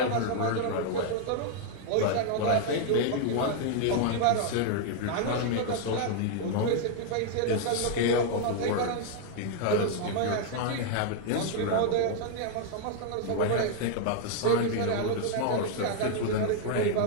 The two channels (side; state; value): both; different; correlation 0.00